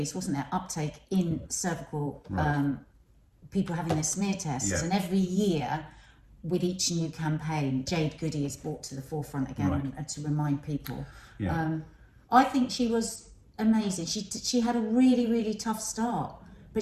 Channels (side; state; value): both; identical; correlation 1.00